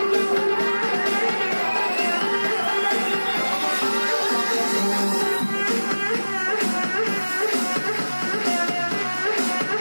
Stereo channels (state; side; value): inverted; both; correlation -1.00